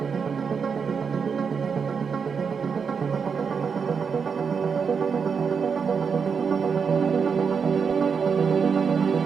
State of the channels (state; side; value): quieter; left; 6.1 dB